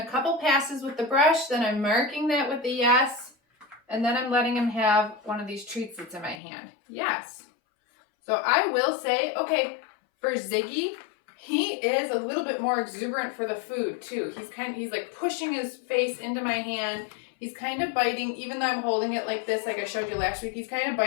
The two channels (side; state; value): right; drops out; at 6.4 s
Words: couple passes with the brush, then I'm marking that with a yes, and then I'm letting him have one of these treats that's in my hand. Yes. So I will say, okay, for Ziggy, he is a little bit more exuberant for the food too. He's like pushing his face into my hand. He's kind of biting, even though I'm holding it like this, like I showed you last week, he's kind of